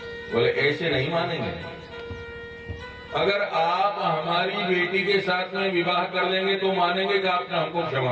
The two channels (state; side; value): identical; both; correlation 1.00